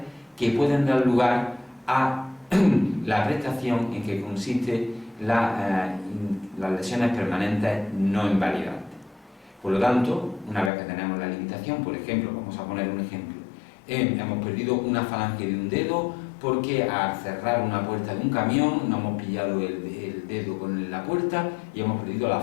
que pueden dar lugar a la prestación en que consiste las lesiones permanentes no invalidantes. Por lo tanto, una vez que tenemos la limitación, por ejemplo, vamos a poner un ejemplo, hemos perdido una falange de un dedo porque al cerrar una puerta de un camión no hemos pillado el dedo con la puerta y hemos perdido la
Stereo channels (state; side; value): drops out; right; at 10.7 s